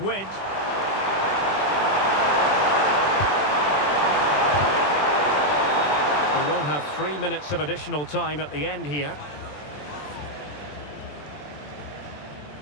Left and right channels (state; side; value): late; right; 20 ms